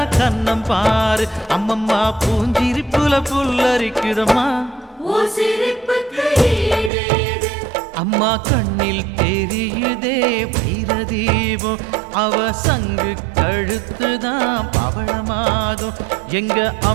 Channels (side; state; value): left; drops out; at 6.9 s